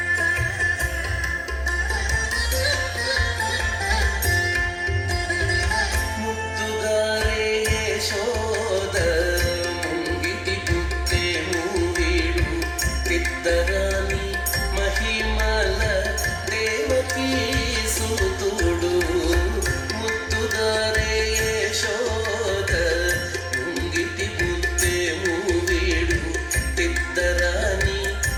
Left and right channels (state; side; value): identical; both; correlation 1.00